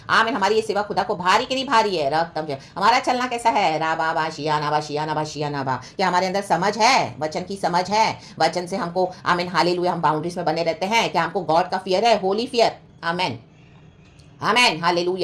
आमीन। हमारी ये सेवा खुदा को भारी कि नहीं भारी है। रक्तम जय। हमारा चलना कैसा है, राबा बा शिया नाबा शिया नाबा शिया नाबा। क्या हमारे अंदर समझ है, वचन की समझ है, वचन से हमको आमीन हालेलुया हम बाउंड्रीज में बने रहते हैं। क्या हमको गॉड का फियर है, होली फियर। आमीन आमेन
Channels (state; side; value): identical; both; correlation 1.00